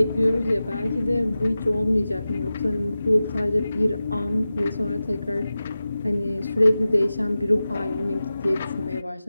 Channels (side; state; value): both; inverted; correlation -0.95